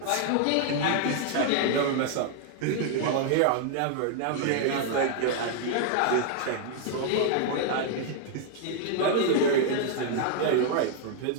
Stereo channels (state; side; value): different; both; correlation 0.00